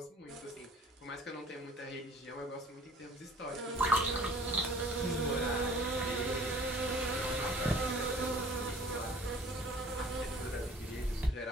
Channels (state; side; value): normal; both; correlation 0.50